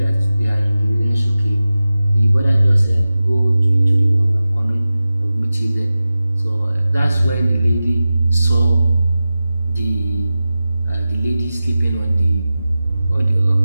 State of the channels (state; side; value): inverted; both; correlation -0.95